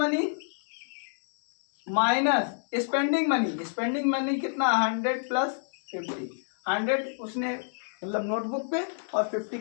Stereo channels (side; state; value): right; silent; digital silence